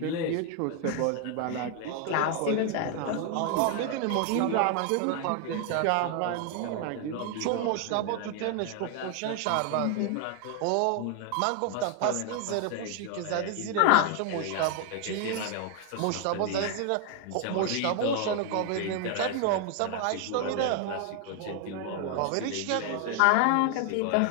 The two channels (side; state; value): both; different; correlation 0.00